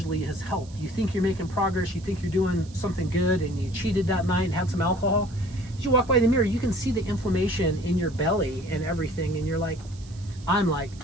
has helped. You think you're making progress, you think you're doing something good, and you cheated that night and had some alcohol. As you walk by the mirror, you can see the inflammation in your belly and everything, and you're like,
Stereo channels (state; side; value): noise; right; hiss, 23 dB below the sound